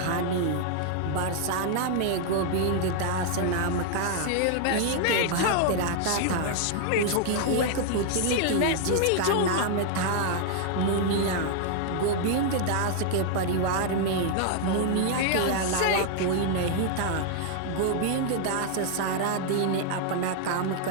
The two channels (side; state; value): both; different; correlation 0.00